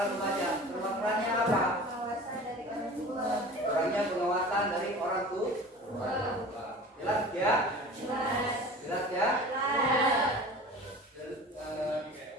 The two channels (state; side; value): normal; both; correlation 0.39